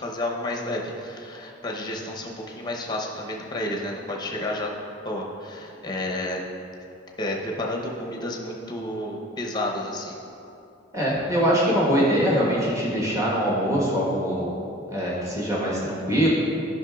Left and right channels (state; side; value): normal; both; correlation 0.43